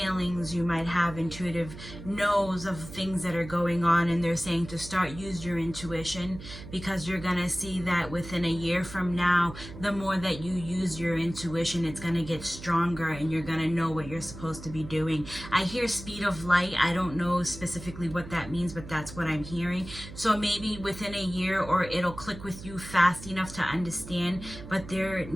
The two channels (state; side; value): noise; right; hum, 13 dB below the sound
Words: You might have intuitive knows of things that are going on, and they're saying to start use your intuition, because you're gonna see that within a year from now, the more that you use your intuition, it's gonna get stronger, and you're gonna know what you're supposed to be doing. I hear speed of light. I don't know specifically what that means, but that's what I'm hearing. So maybe within a year, or it'll click with you fast enough to understand. But there